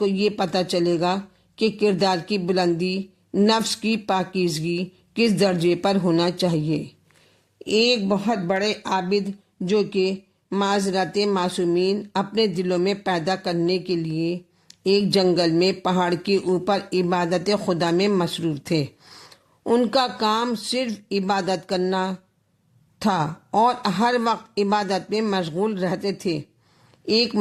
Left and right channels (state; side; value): identical; both; correlation 1.00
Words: یہ پتہ چلے گا کہ کردار کی بلندی، نفس کی پاکیزگی کس درجے پر ہونا چاہیے۔ ایک بہت بڑے عابد جو کہ معذرت معصومین اپنے دلوں میں پیدا کرنے کے لیے ایک جنگل میں پہاڑ کے اوپر عبادت خدا میں مصروف تھے۔ ان کا کام صرف عبادت کرنا تھا اور ہر وقت عبادت میں مشغول رہتے تھے۔ ایک